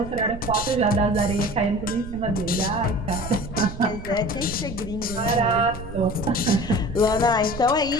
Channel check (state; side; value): noise; right; rumble, 12 dB below the sound